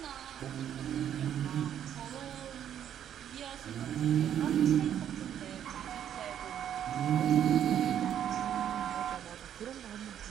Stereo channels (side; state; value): left; quieter; 9.9 dB